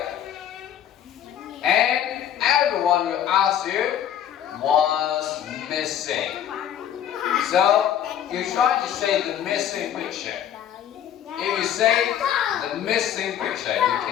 And everyone will ask you what's missing. So you try to say the missing picture. If you say the missing picture, you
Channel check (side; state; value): right; quieter; 10.1 dB